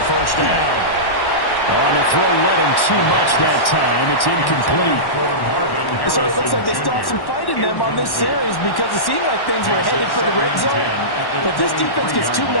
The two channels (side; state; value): right; late; 1.1 ms